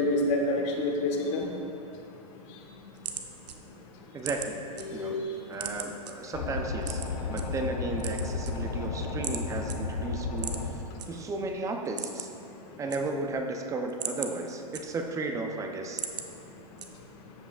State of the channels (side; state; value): both; normal; correlation 0.04